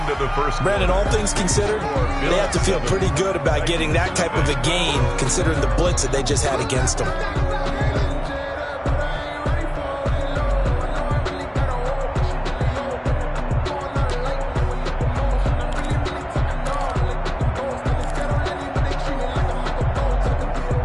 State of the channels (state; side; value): identical; both; correlation 1.00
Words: of the first. Brandon, all things considered, they have to feel pretty good about getting that type of a gain, considering the blitz that they just had against them.